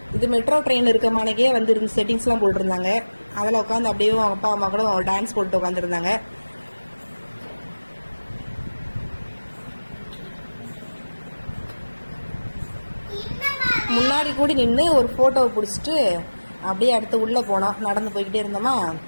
இது மெட்ரோ ட்ரெயின் இருக்க மானக்கே இருந்து செட்டிங்ஸ்லாம் போட்டுருந்தாங்க. அதில் உட்காந்து அப்படியே அவங்க அப்பா அம்மா கூட டான்ஸ் போட்டு உட்காந்துருந்தாங்க. முன்னாடி கூடி நின்று ஒரு ஃபோட்டோவை பிடிச்சிட்டு அப்படியே அடுத்து உள்ளே போனோம். நடந்து போய்கிட்டே இருந்தோமா.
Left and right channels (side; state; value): both; inverted; correlation -1.00